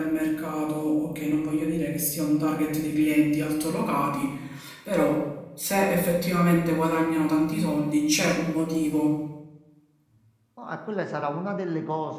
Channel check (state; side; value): identical; both; correlation 1.00